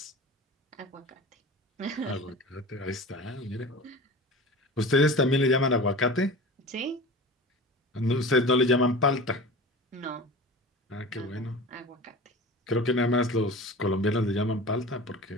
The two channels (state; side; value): normal; both; correlation 0.35